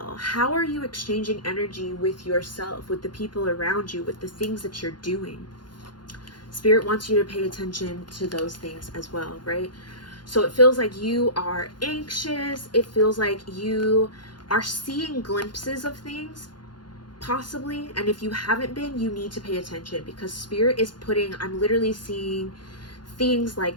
How are you exchanging energy with yourself, with the people around you, with the things that you're doing? Spirit wants you to pay attention to those things as well, right? So it feels like you are anxious. It feels like you are seeing glimpses of things, possibly. And if you haven't been, you need to pay attention, because Spirit is putting, I'm literally seeing things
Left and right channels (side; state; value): right; late; 0.71 ms